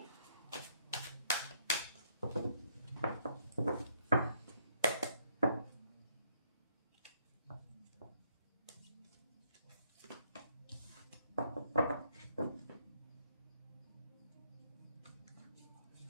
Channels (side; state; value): both; inverted; correlation -0.70